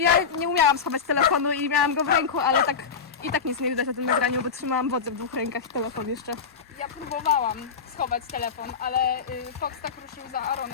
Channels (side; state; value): right; quieter; 5.9 dB